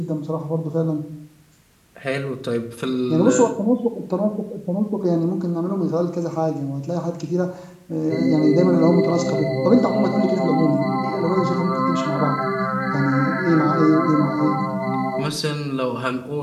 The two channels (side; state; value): both; identical; correlation 1.00